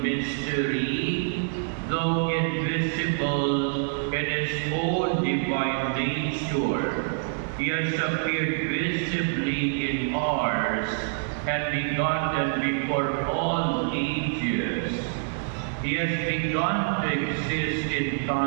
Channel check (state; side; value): silent; left; digital silence